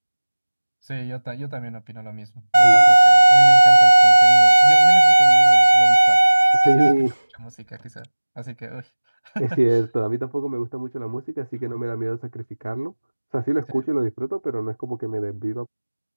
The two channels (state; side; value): inverted; both; correlation -1.00